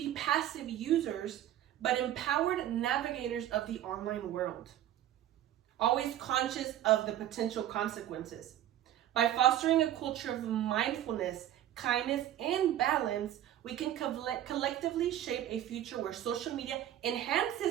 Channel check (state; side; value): quieter; left; 12.1 dB